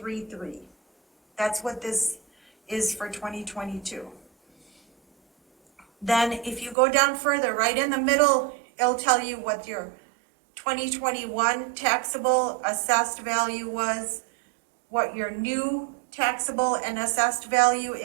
That's what this is for 2022. Then if you go down further, right in the middle, it'll tell you what your 2021 taxable assessed value was, what your new taxable and assessed value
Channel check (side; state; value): left; drops out; at 6.8 s